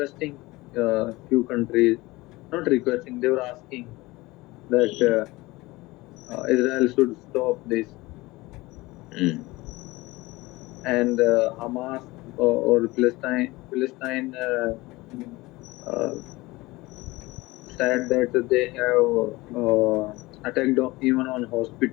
few countries, not requesting, they were asking that Israel should stop this, Mm. and Hamas or Palestine uh, said that they have attacked even on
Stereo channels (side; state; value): right; quieter; 21.0 dB